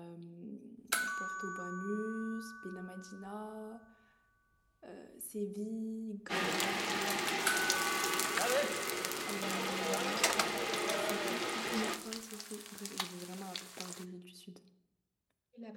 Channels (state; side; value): identical; both; correlation 1.00